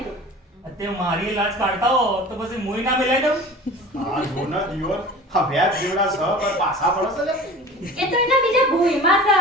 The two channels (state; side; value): normal; both; correlation 0.39